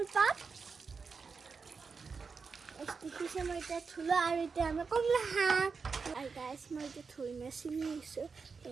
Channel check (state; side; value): quieter; left; 5.0 dB